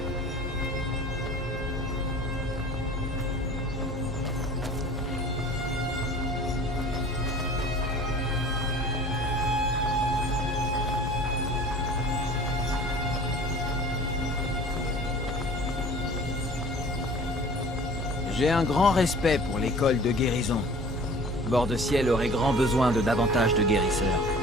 J'ai un grand respect pour l'école de guérison. Bord-de-Ciel aurait grand besoin de davantage de guérisseurs.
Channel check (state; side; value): normal; both; correlation 0.45